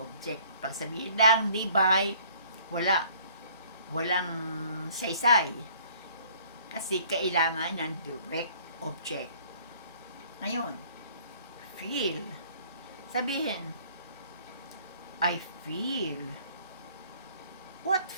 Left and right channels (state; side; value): inverted; both; correlation -0.56